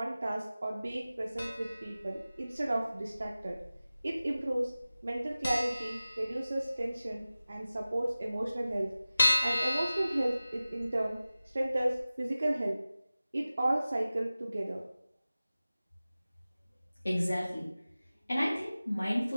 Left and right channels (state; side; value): inverted; both; correlation -0.96